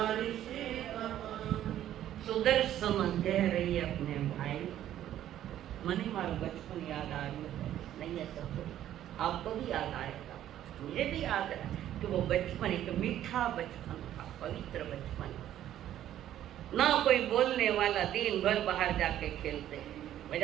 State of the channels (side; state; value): left; quieter; 11.9 dB